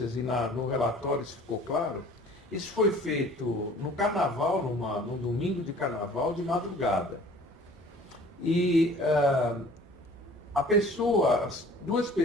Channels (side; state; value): both; normal; correlation 0.50